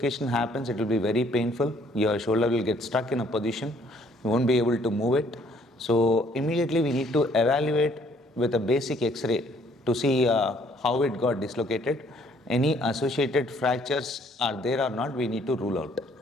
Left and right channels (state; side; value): normal; both; correlation 0.63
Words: happens, it will be very painful. Your shoulder will get stuck in a position, you won't be able to move it. So immediately we need to evaluate with a basic x-ray to see how it got dislocated. Any associated fractures are there or not, we need to rule out.